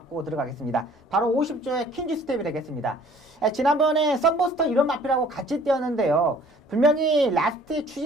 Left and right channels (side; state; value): both; normal; correlation 0.54